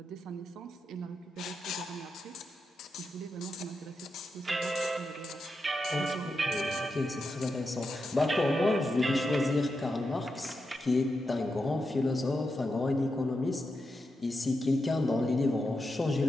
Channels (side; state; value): both; normal; correlation 0.87